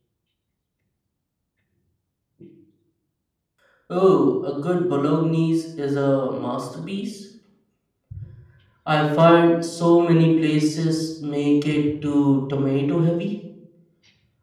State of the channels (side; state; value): both; identical; correlation 1.00